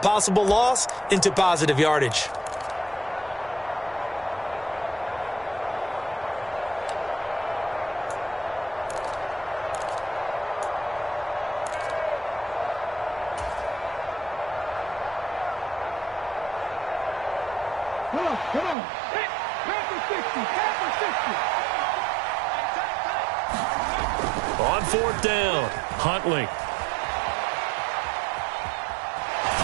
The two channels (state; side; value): drops out; left; at 18.8 s